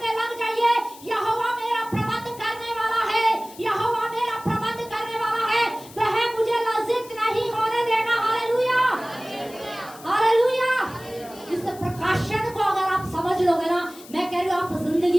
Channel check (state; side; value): noise; left; hiss, 19 dB below the sound